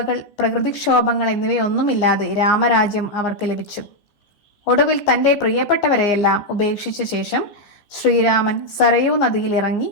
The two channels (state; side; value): late; right; 15 ms